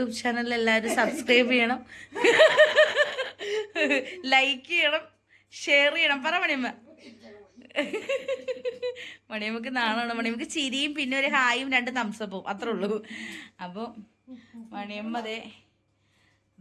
ചാനൽ എല്ലാവരും സബ്സ്ക്രൈബ് ചെയ്യണം, ലൈക്ക് ചെയ്യണം, ഷെയർ ചെയ്യണം. പറ മണിയമ്മ. മണിയമ്മക്ക് നാണമാണ്. മണിയമ്മക്ക് ചിരിയും പിന്നെ ഒരു ഹായും 2 തംസപ്പും അത്രേ ഉള്ളൂ. അപ്പോൾ മണിയമ്മ അതേ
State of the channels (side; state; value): both; identical; correlation 1.00